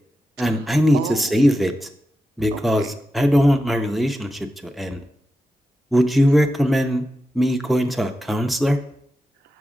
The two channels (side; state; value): both; normal; correlation 0.91